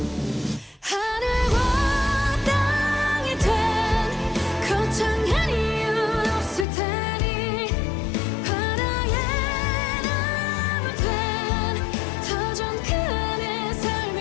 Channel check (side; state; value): right; drops out; at 6.7 s